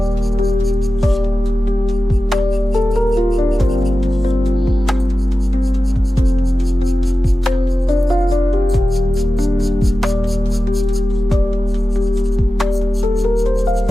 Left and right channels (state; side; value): normal; both; correlation 0.94